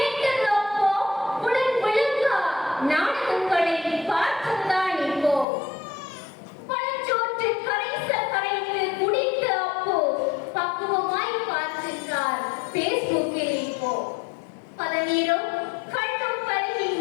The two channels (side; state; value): right; drops out; at 5.5 s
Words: அப்போ. உடன் விளக்கா நாடகங்களை பார்ப்பதுதான் இப்போ. பழச்சோற்று கரைந்து குடித்த அப்போ பக்குவமாய் பார்க்கின்றார் பேஸ்புக்கில் இப்போ. பதநீரும் கண்ணும் பருகி